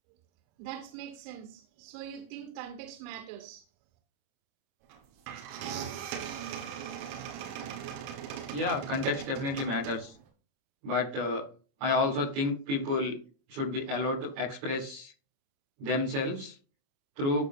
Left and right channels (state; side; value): late; left; 32 ms